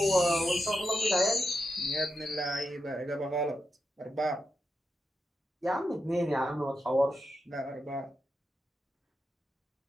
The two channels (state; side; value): normal; both; correlation 0.87